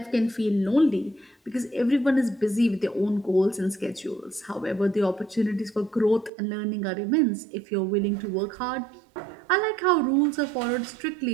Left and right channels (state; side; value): drops out; left; at 6.3 s